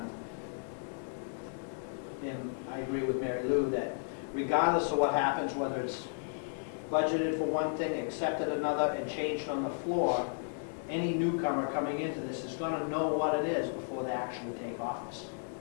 And I agree with Mary Lou that regardless of what happens, whether it's budgeted for one thing, accepted another, and changed on the floor, any newcomer coming into this is going to know what it is before they actually take office.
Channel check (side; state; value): right; silent; digital silence